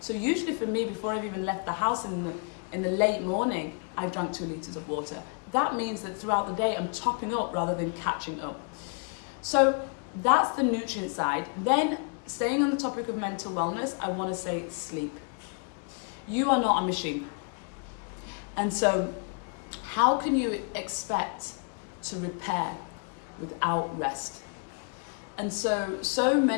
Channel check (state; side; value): quieter; right; 39.7 dB